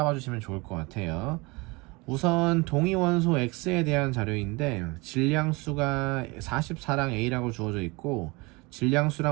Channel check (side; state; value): left; quieter; 25.6 dB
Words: 주시면 좋을 것 같아요. 우선 동위원소 X에 대한 자료인데 질량수가 44랑 A라고 주어져 있고